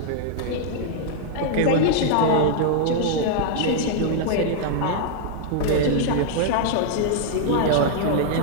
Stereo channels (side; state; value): both; different; correlation -0.01